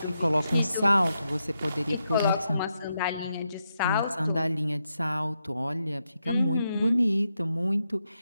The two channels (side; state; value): both; inverted; correlation -0.84